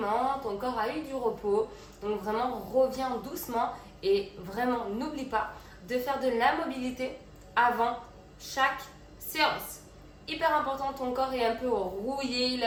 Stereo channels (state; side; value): identical; both; correlation 1.00